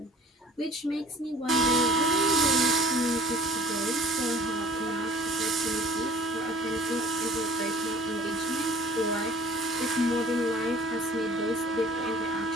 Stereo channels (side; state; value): both; normal; correlation 0.49